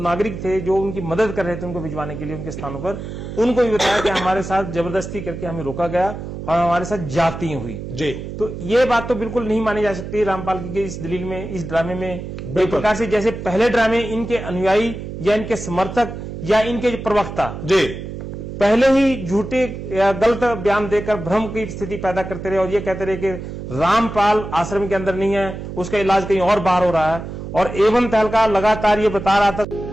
थे जो उनकी मदद कर रहे थे उनको भिजवाने के लिए उनके स्थानों पर, उनको भी बताया कि हमारे साथ जबरदस्ती करके हमें रोका गया और हमारे साथ जाती हुई। जी। तो ये बात तो बिल्कुल नहीं मानी जा सकती रामपाल की इस दलील में, इस ड्रामे में। एक प्रकार से जैसे पहले ड्रामे इनके अनुयायी या इनके समर्थक या इनके जो प्रवक्ता जी पहले ही झूठे या गलत बयान देकर भ्रम की स्थिति पैदा करते रहे और ये कहते रहे कि रामपाल आश्रम के अंदर नहीं है, उसका इलाज कहीं और बाहर हो रहा है। और एवं तहलका लगातार ये बता रहा था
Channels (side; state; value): right; noise; hum, 8 dB below the sound